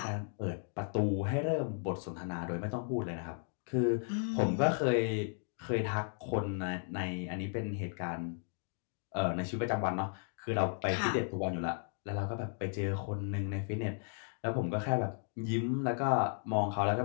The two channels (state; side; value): silent; right; 54 dB below the other